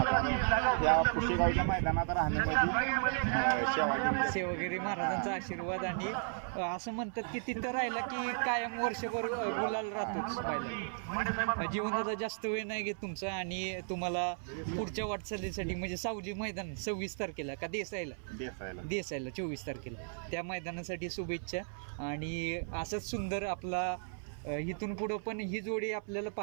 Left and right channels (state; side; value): silent; left; 54 dB below the other